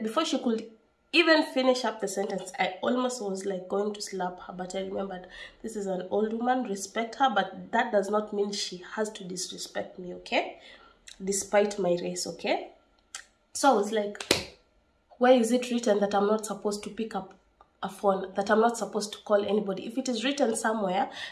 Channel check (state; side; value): identical; both; correlation 1.00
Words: before she could even finish up the sentence, I almost was like going to slap her, but I remembered this is an old woman, respect her, but that does not mean she has to disrespect me, okay? Despite my race, okay? So I was like, why is it written that I'm not supposed to pick up a phone, that I'm not supposed to call anybody? If it is written somewhere,